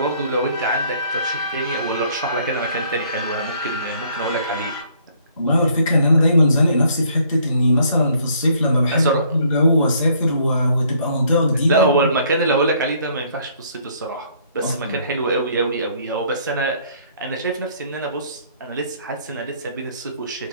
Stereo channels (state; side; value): inverted; both; correlation -0.62